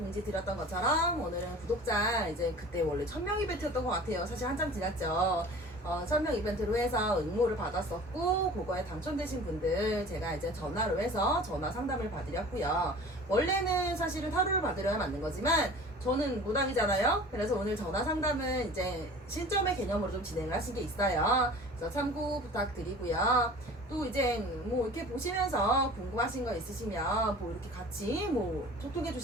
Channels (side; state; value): both; normal; correlation 0.42